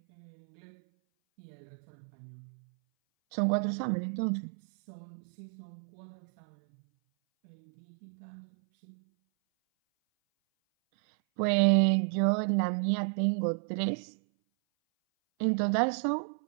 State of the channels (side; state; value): left; silent; 57 dB below the other